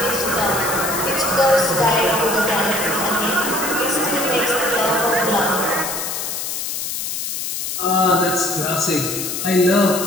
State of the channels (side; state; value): left; noise; hiss, 4 dB below the sound